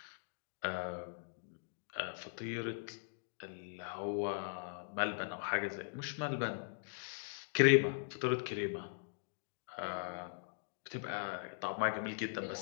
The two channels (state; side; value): silent; right; digital silence